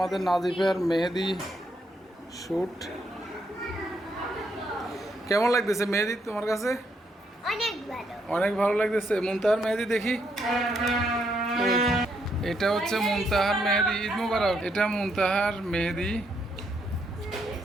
নাজিফের মেহেদি শ্যুট কেমন লাগতেছে মেহেদি তোমার কাছে? অনেক ভালো। অনেক ভালো লাগতেছে। মুনতাহার মেহেদি দেখি। এটা হচ্ছে মুনতাহার মেহেদি। ঈদ মুবারক। এটা মুনতাহার মেহেদি।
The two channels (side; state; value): both; normal; correlation 0.75